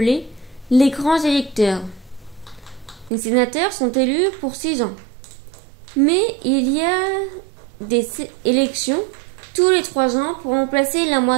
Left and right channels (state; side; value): drops out; left; at 3.1 s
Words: les grands électeurs. Les sénateurs sont élus pour 6 ans. Mais il y a des élections tous les 3 ans pour remplacer la